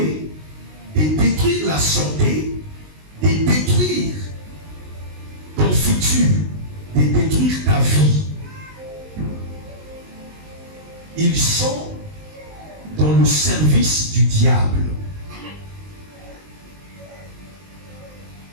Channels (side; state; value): left; late; 19 ms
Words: de détruire la santé, de détruire ton futur, de détruire ta vie. Ils sont dans le service du diable.